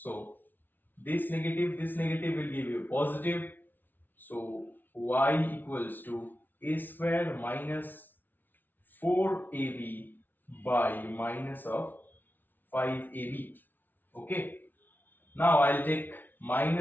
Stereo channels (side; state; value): right; late; 0.088 ms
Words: this negative will give you positive. So y equals to a square minus 4ab by minus of 5ab. Okay. Now I'll take